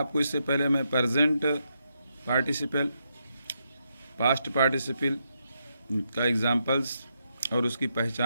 इससे पहले मैं प्रेजेंट पार्टिसिपल, पास्ट पार्टिसिपल का एग्जांपल्स और उसकी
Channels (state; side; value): inverted; both; correlation -0.82